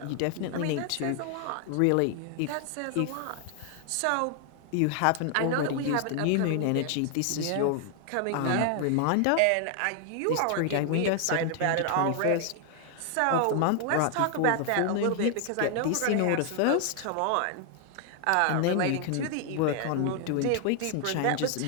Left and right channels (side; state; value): both; different; correlation 0.00